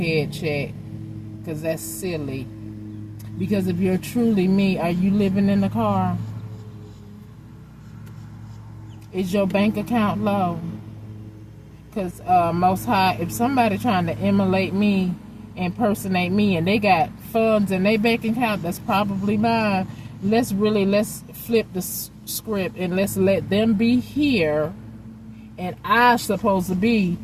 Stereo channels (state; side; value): identical; both; correlation 1.00